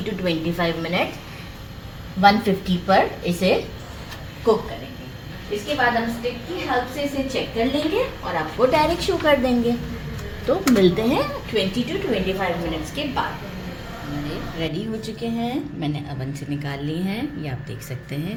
to 25 मिनट 150 पर इसे कुक करेंगे। इसके बाद हम स्टिक की हेल्प से इसे चेक कर लेंगे और आपको डायरेक्ट शो कर देंगे। तो मिलते हैं 20 to 25 मिनट्स के बाद। हमारे रेडी हो चुके हैं, मैंने अवन से निकाल लिए हैं, ये आप देख सकते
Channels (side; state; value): both; identical; correlation 1.00